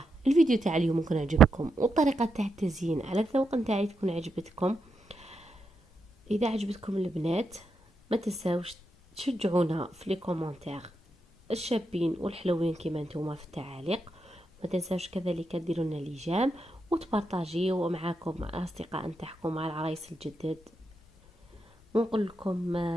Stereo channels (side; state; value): both; normal; correlation 0.84